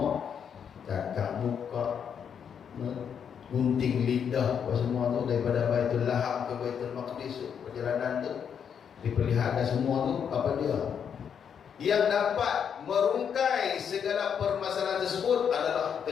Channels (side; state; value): right; quieter; 7.7 dB